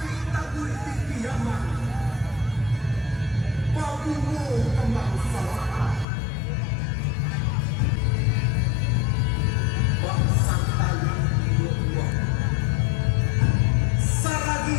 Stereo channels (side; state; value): right; drops out; at 6.1 s